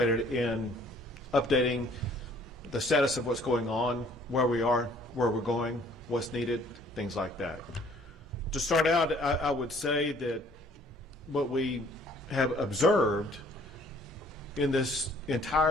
in updating the status of what's going on, where we are, where we're going, what's needed, things like that. To start out, I would say that what we have observed in this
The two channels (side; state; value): both; normal; correlation 0.58